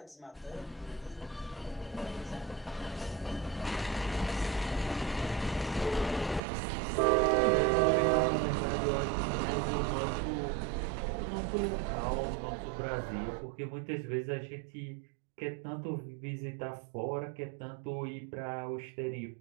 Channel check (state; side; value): drops out; left; at 6.4 s